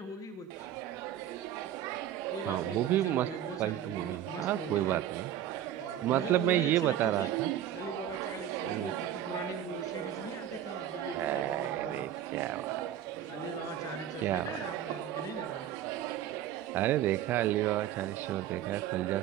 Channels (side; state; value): left; quieter; 10.9 dB